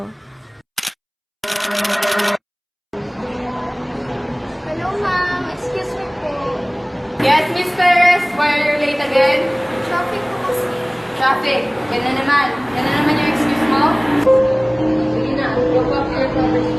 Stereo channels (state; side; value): identical; both; correlation 1.00